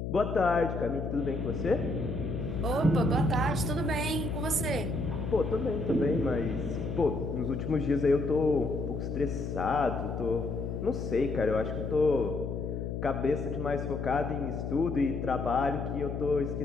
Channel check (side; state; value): left; noise; hum, 4 dB below the sound